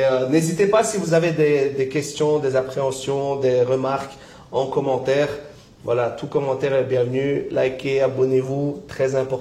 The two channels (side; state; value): both; identical; correlation 1.00